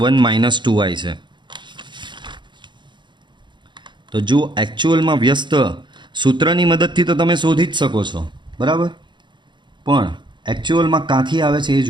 - 2i છે. તો જો એકચ્યુઅલમાં વ્યસ્ત સૂત્રની મદદથી તો તમે શોધી જ શકો છો, બરાબર, પણ એકચ્યુઅલમાં ક્યાંથી આવે છે એ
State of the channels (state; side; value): late; left; 0.23 ms